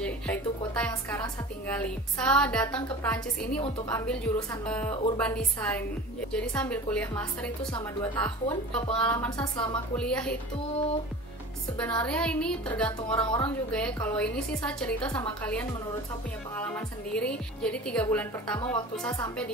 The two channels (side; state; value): both; normal; correlation 0.37